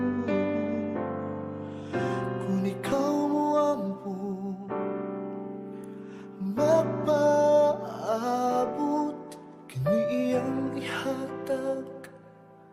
Kung ikaw mo ampo mapaabot, kini iyang ihatag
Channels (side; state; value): both; identical; correlation 1.00